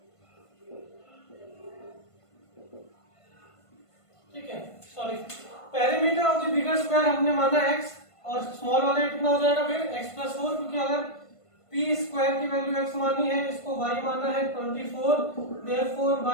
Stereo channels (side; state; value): right; late; 1.5 ms